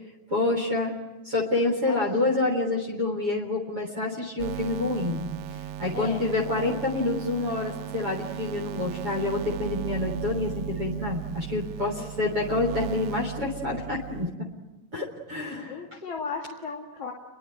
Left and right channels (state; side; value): late; left; 7.2 ms